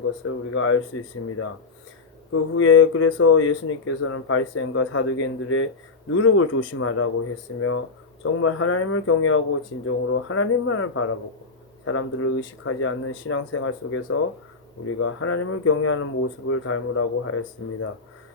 것을 우리가 알 수 있습니다. 그 후에 그래서 예수님께서는 바리새인과 사두개인들의 누룩을 조심하라고 했으며 정말 하나님을 경외하고 진정으로 하나님만을 바라보고 사람들을 의식하지 않는 신앙생활 속에서 우리가 하나님을 경외하는 모습을 닮으라고 하였습니다.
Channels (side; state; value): right; quieter; 4.1 dB